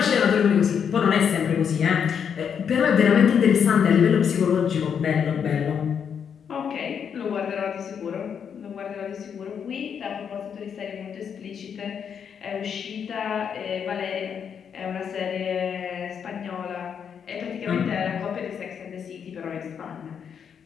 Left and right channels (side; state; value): right; quieter; 7.5 dB